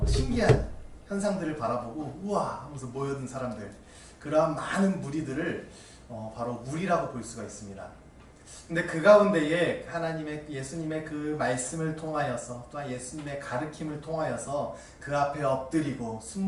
신기한 현상들을 바라보고 우와 하면서 모여든 사람들, 그러한 많은 무리들을 바로 무리라고 볼 수가 있습니다. 근데 그 가운데에 예수님의 그 말씀을 통하여서, 또한 예수님의 가르침을 통하여서 그 앞에 엎드리고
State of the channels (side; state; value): both; identical; correlation 1.00